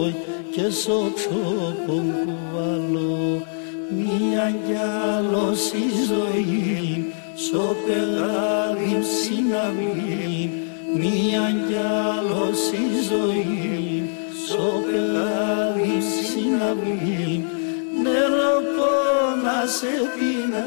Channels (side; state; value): right; silent; digital silence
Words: και στο ξόπον κουβαλώ. Μία κι άλλος η ζωή, στο πεγάδι συναυλή. Μία κι άλλος η ζωή, στο πεγάδι συναυλή. Νερό πόνα σε